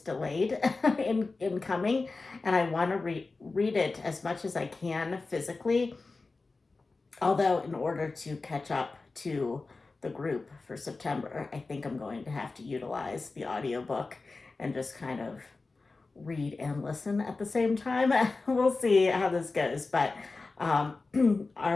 delayed in coming, and I want to read it as much as I can physically. Although in order to catch up to the group for September, I think I'm going to have to utilize the audiobook and just kind of read and listen at the same time. We'll see how this goes. But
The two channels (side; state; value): right; quieter; 3.7 dB